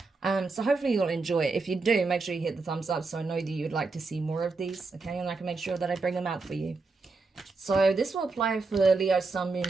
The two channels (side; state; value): left; quieter; 4.0 dB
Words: So hopefully you'll enjoy it. If you do, make sure you hit the thumbs up so I know that you'd like to see more of these, okay? And I can make sure that I bring them out for you. So this will apply for Leo, Sun,